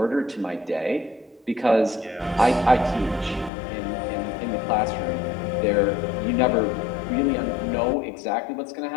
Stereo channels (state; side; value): drops out; right; at 3.5 s